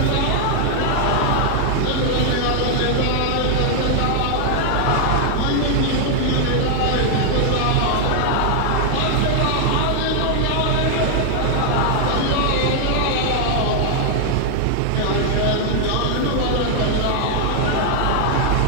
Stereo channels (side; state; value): both; different; correlation 0.00